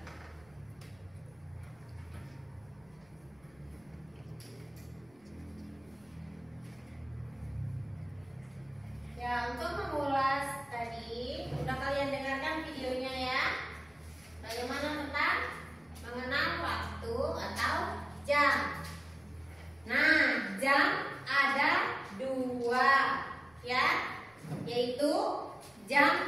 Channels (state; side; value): noise; left; rumble, 30 dB below the sound